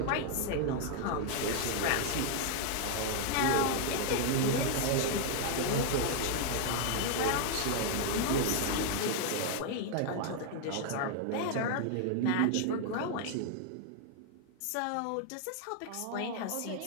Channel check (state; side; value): different; both; correlation 0.00